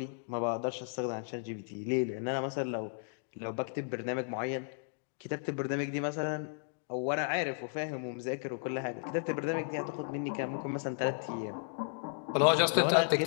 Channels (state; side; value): silent; right; digital silence